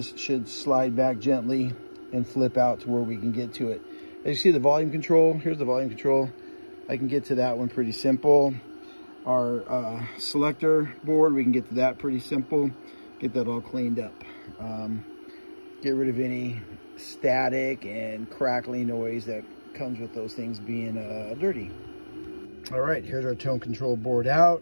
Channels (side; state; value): both; inverted; correlation -1.00